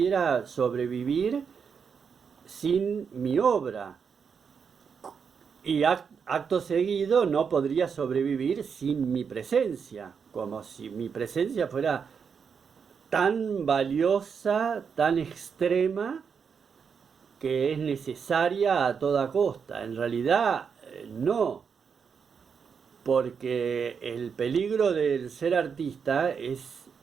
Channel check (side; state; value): left; quieter; 6.4 dB